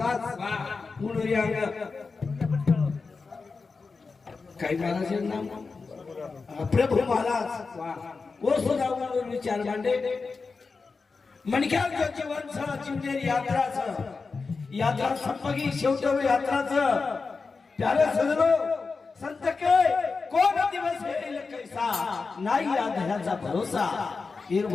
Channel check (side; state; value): right; quieter; 4.4 dB